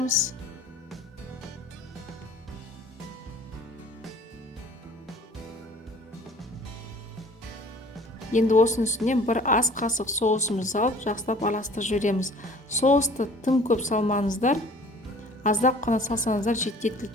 Енді осының үстіне 1 ас қасық соусымызды салып, жақсылап араластырып жібереміз. Соусты тым көп салмаңыздар, аздап қана салсаңыздар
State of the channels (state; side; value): normal; both; correlation 0.50